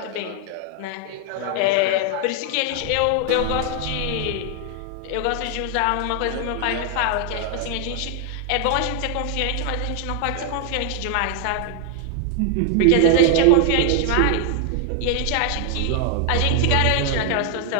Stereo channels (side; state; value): both; different; correlation 0.00